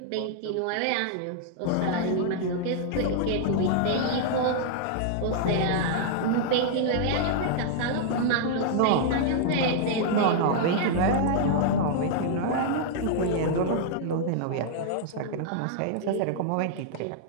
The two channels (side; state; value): both; different; correlation -0.01